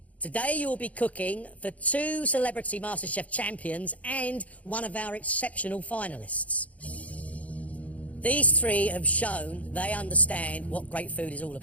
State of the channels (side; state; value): right; late; 0.069 ms